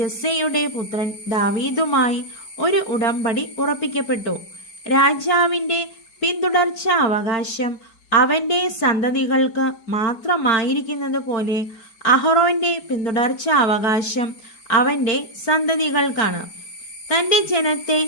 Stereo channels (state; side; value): late; right; 4.4 ms